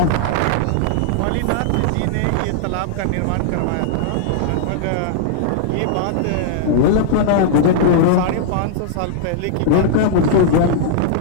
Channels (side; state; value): both; different; correlation -0.01